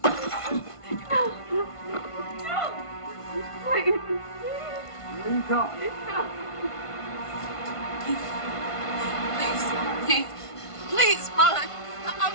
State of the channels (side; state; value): right; late; 1.5 ms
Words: Please. Please go. Please, run. I'm